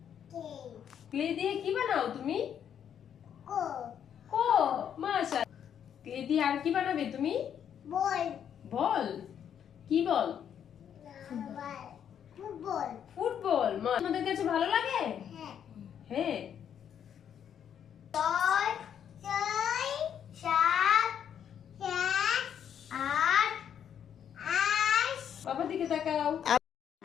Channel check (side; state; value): right; quieter; 8.8 dB